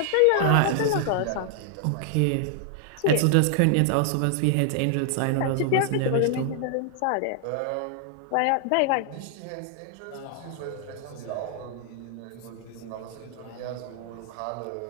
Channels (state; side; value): different; both; correlation 0.00